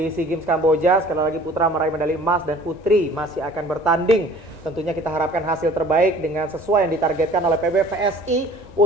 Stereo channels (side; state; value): right; late; 1.9 ms